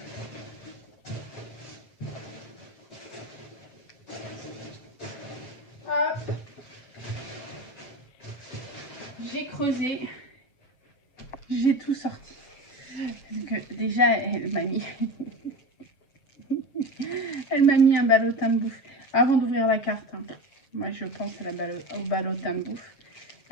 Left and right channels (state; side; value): late; right; 7.3 ms